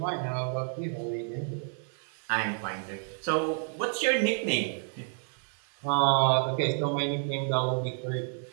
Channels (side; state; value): left; silent; 58 dB below the other